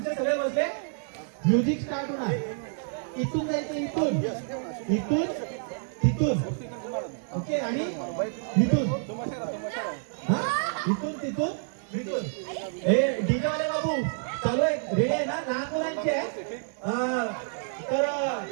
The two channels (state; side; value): silent; left; digital silence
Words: सगळे बसले. म्युझिक स्टार्ट होणार. इथून जायचं, इथून तिथून, ओके. आणि इथून, इथून तिथून इथून. हे डीजे वाले बाबू चालू आहे, रेडी आहे ना? लहान मुलांची आहे. तर